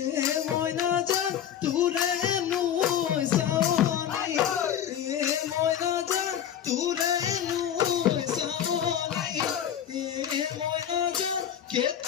এ ময়না যা তুরে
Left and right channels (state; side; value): quieter; right; 9.7 dB